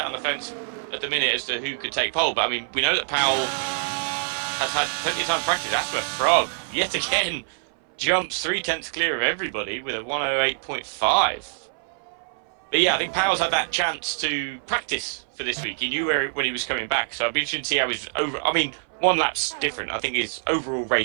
fence at the minute as to who could take pole. But I mean, we know that Powell has had plenty of time to practice. AsthmaFrog yet again jumps 0.3 clear of everybody with a 1:08.5. But yeah, I think Powell's had that chance to practice for this week. He knew when he was coming back, so I'd be interested to see how his I mean, one lap's different. I think his overall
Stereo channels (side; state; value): left; silent; 60 dB below the other